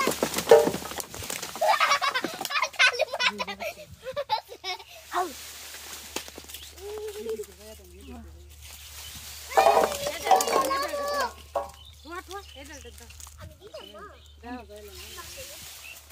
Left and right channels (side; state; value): both; identical; correlation 1.00